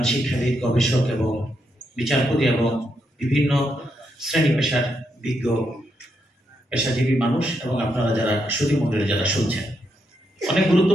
শিক্ষাবিদ, গবেষক এবং বিচারপতি এবং বিভিন্ন শ্রেণী পেশার বিজ্ঞ পেশাজীবী মানুষ এবং আপনারা যারা সুধী মণ্ডলী যারা শুনছেন। অনেক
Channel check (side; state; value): both; normal; correlation 0.81